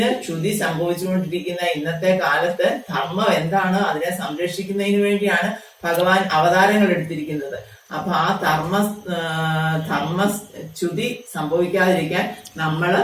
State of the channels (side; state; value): both; identical; correlation 1.00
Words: ച്യുതി സംഭവിച്ചുകൊണ്ടിരിക്കുന്ന ഇന്നത്തെ കാലത്ത് ധർമ്മം എന്താണ്, അതിനെ സംരക്ഷിക്കുന്നതിന് വേണ്ടിയാണ് ഭഗവാൻ അവതാരങ്ങൾ എടുത്തിരിക്കുന്നത്. അപ്പൊ ആ ധർമ്മച്യുതി സംഭവിക്കാതിരിക്കാൻ